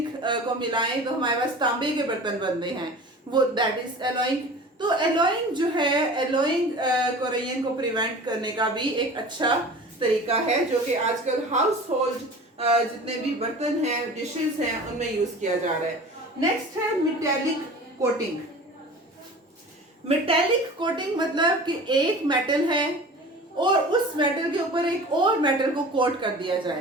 को मिलाएं तो हमारे पास तांबे के बर्तन बनते हैं, वो दैट इज एलॉइंग। तो एलॉइंग जो है, एलॉइंग कोरोजन को प्रिवेंट करने का भी एक अच्छा तरीका है, जो कि आजकल हाउस होल्ड जितने भी बर्तन हैं, डिशेस हैं, उनमें यूज किया जा रहा है। नेक्स्ट है मेटेलिक कोटिंग। मेटेलिक कोटिंग मतलब कि एक मेटल है और उस मेटल के ऊपर एक और मेटल को कोट कर दिया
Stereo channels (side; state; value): both; normal; correlation 0.39